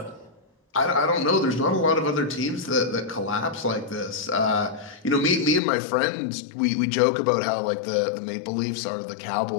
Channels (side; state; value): right; drops out; at 5.6 s